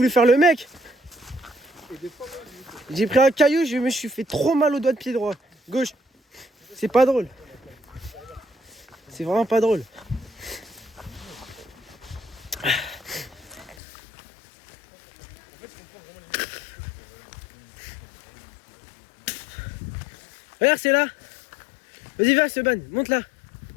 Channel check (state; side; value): drops out; right; at 13.8 s